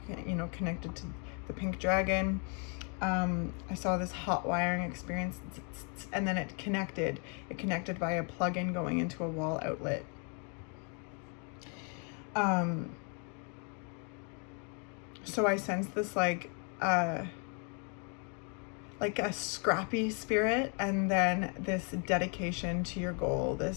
connected to the pink dragon. I saw this hot wiring experience, and then it connected by a plug-in going into a wall outlet. So I sensed this like a scrappy spirit, and then this dedication to your goal,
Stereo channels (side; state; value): right; quieter; 38.4 dB